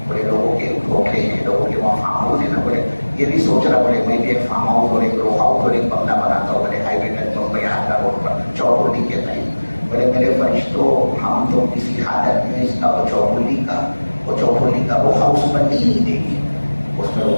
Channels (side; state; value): both; inverted; correlation -1.00